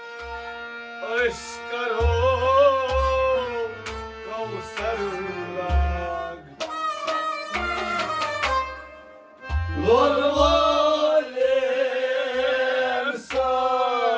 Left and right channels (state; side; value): identical; both; correlation 1.00